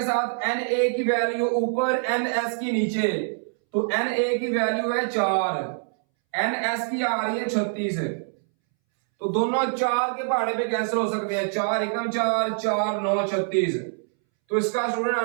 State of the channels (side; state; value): left; silent; 62 dB below the other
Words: साथ एन ए की वैल्यू ऊपर, एन एस की नीचे। तो एन ए की वैल्यू है 4, एन एस की आ रही है 36। तो दोनों 4 के पहाड़े पे कैंसिल हो सकते हैं, 4 एकम 4 4 9 36। तो इसका स्टूडेंट